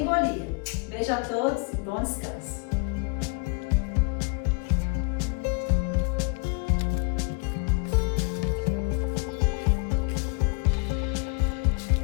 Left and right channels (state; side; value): quieter; right; 33.4 dB